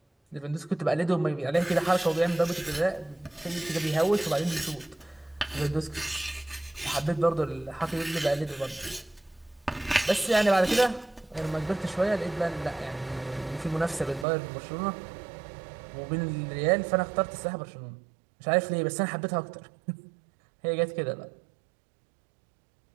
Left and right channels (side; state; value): left; drops out; at 14.2 s